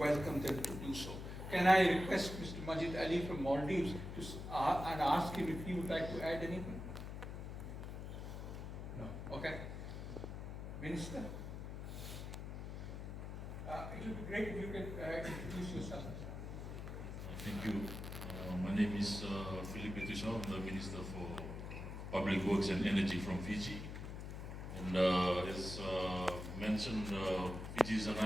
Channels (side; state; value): left; noise; hum, 7 dB below the sound